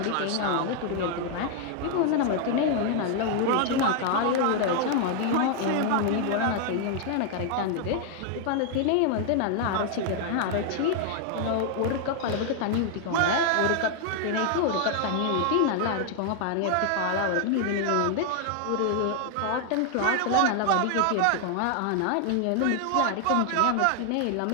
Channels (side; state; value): both; different; correlation 0.00